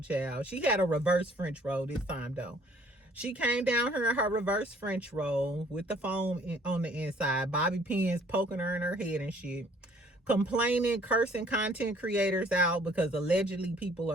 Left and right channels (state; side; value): normal; both; correlation 0.58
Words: child. She had a reverse French roll this time, though. She came down here in her reverse French roll with the foam on the inside. Bobby pins poking her in her head and shit. Complaining, cursing content creators out because allegedly people